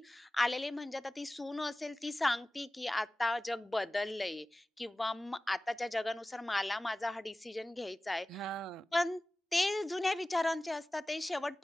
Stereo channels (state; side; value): normal; both; correlation 0.97